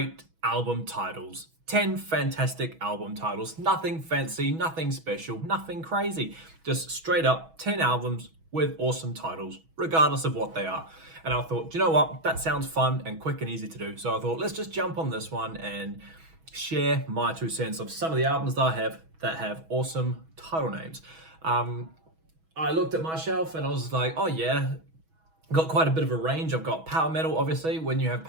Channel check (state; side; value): late; left; 6.2 ms